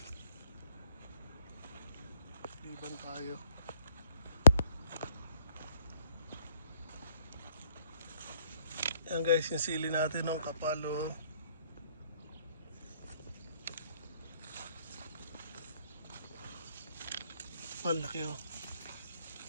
Liban tayo. Yan guys, yung sili natin ng kapalo. Malaki oh.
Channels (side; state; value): both; inverted; correlation -0.64